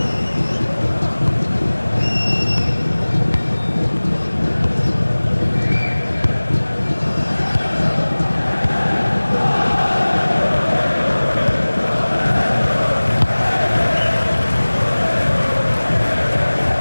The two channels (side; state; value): both; inverted; correlation -1.00